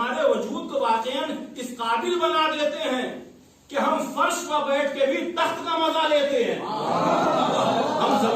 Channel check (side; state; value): both; identical; correlation 1.00